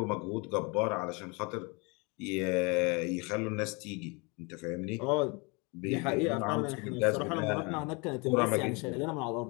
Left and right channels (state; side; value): quieter; right; 29.9 dB